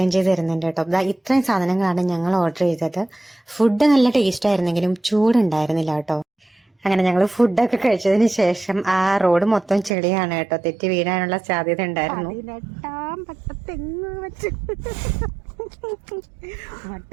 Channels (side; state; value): left; drops out; at 9.9 s